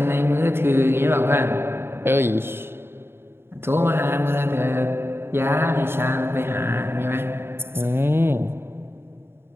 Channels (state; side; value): late; left; 0.11 ms